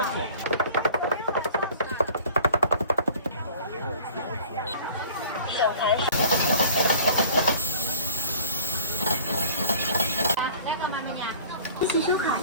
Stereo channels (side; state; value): both; inverted; correlation -0.48